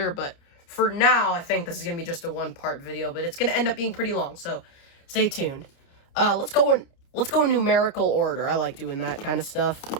but for now, I think this is going to be just a 1-part video, but it's going to end up being pretty long, so stay tuned. Let's go in numerical order. I like doing that kind of stuff.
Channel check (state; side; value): late; right; 29 ms